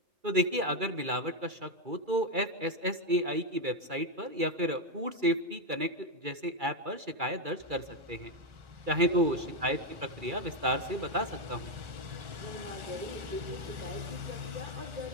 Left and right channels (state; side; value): late; left; 2.3 ms